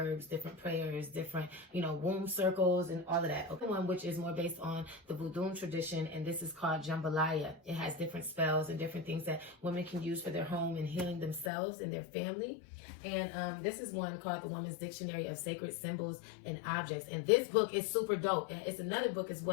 different prayers, different, you know, womb circles and all of that. Okay, one which is more based on the Voodoo tradition, and this is called Jambalaya. It has different spells and different things that women can use for their home and healing themselves and their family. And this is one called The Woman's Dictionary of Sacred Symbols and Objects. And this book is super dope. It's another book as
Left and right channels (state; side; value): drops out; right; at 11.5 s